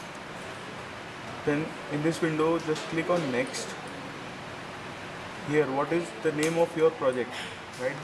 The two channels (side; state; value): both; identical; correlation 1.00